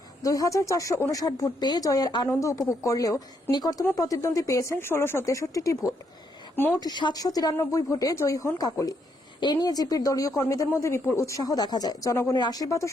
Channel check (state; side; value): normal; both; correlation 0.75